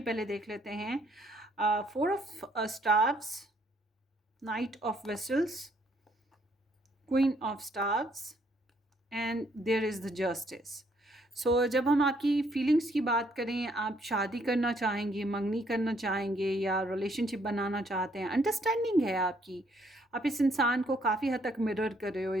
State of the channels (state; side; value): normal; both; correlation 0.68